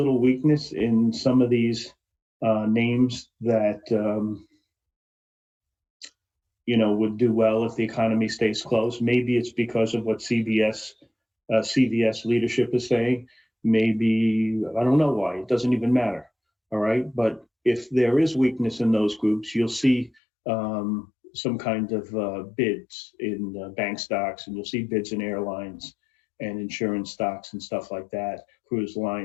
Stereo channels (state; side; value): drops out; right; at 20.2 s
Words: weakness in some of these names that, would do well if the economy stays closed. Maybe it's because of what CVS leadership is saying. Maybe, I don't know why. It doesn't even matter. All right. But if there is weakness in those groups, you'll see some kind of bids in bank stocks, and you'll see bids in airlines and insurance stocks and stuff like that, cruise